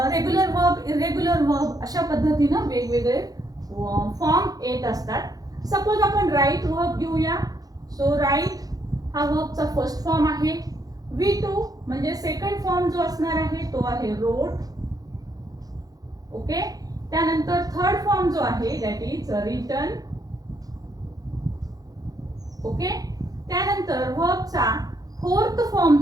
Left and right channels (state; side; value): late; left; 0.18 ms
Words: वर्ब, इरेग्युलर वर्ब अशा पद्धतीनं वेगवेगळे फॉर्म येत असतात. सपोज आपण राईट वर्ब घेऊया. सो राईट हा वर्बचा फर्स्ट फॉर्म आहे. V2 म्हणजे सेकंड फॉर्म जो असणार आहे तो आहे रोट. ओके. त्यानंतर थर्ड फॉर्म जो आहे दॅट इज रिटन. ओके. त्यानंतर वर्बचा फोर्थ फॉर्म